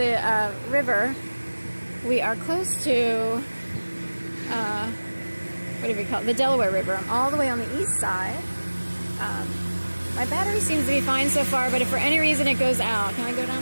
river. We are close to, what do we call it? The Delaware River. I'm all the way on the east side. My battery seems to be fine so far, but if for any reason it goes out, can I go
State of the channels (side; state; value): both; inverted; correlation -1.00